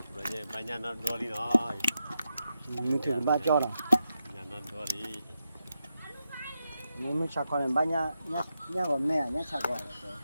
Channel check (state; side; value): inverted; both; correlation -0.87